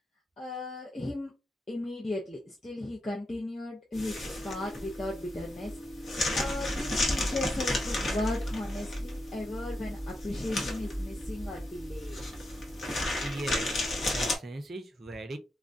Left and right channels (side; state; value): both; normal; correlation 0.85